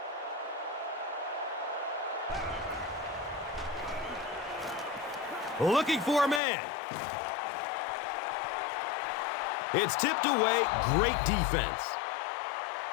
Looking for a man. It's tipped away. Great defense.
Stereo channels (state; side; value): drops out; right; at 6.4 s